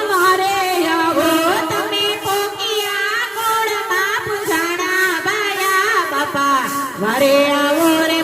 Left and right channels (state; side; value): normal; both; correlation 0.97